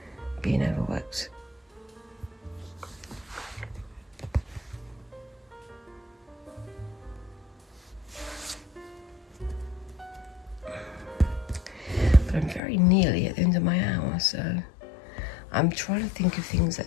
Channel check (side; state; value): right; drops out; at 12.6 s